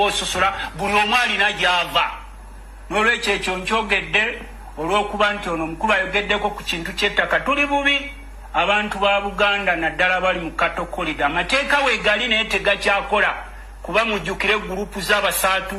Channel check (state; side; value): identical; both; correlation 1.00